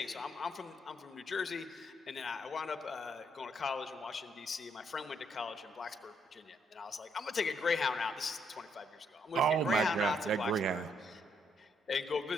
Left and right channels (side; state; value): both; normal; correlation 0.72